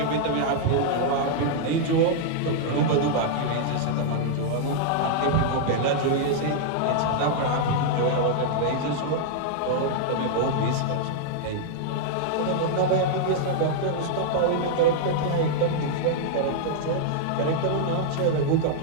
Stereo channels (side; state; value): both; different; correlation -0.01